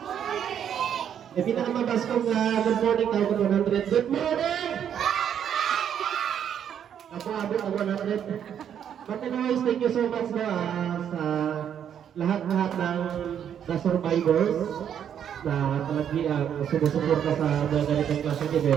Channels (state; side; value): quieter; left; 9.0 dB